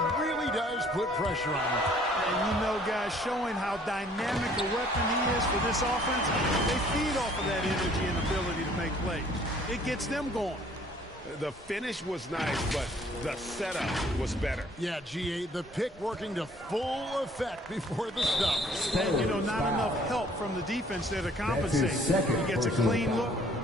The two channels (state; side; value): normal; both; correlation 0.58